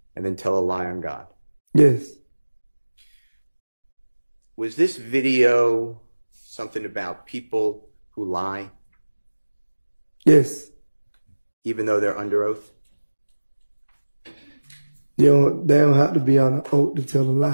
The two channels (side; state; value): both; inverted; correlation -1.00